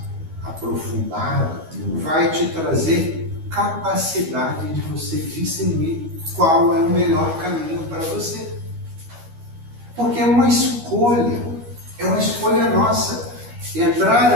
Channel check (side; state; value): left; late; 13 ms